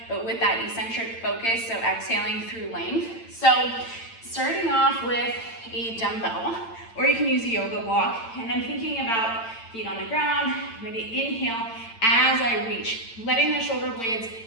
but with that eccentric focus, so exhaling through length. So starting off with a dumbbell, or you can use a yoga block, and I'm thinking about feet on the ground. I'm going to inhale as I reach, letting the shoulder blades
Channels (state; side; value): late; right; 8.9 ms